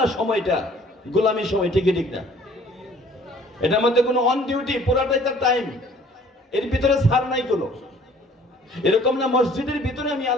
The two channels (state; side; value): normal; both; correlation 0.54